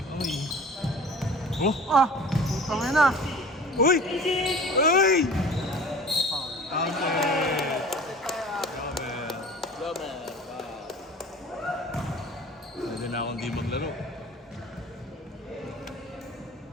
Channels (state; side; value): normal; both; correlation 0.42